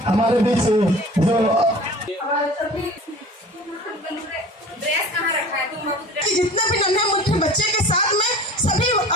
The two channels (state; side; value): normal; both; correlation 0.41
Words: हमारे बीच जो ड्रेस कहाँ रखा है तुम